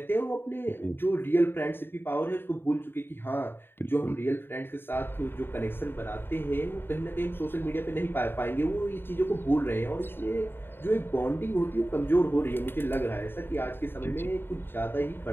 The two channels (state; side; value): late; right; 0.10 ms